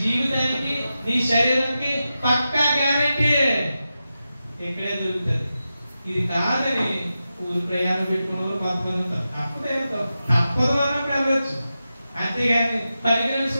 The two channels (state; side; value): inverted; both; correlation -0.91